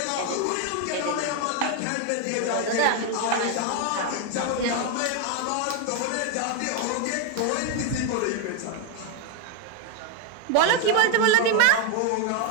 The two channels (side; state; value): both; different; correlation 0.01